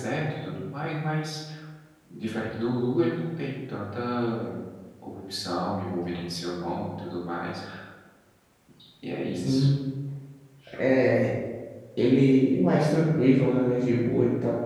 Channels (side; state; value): both; identical; correlation 1.00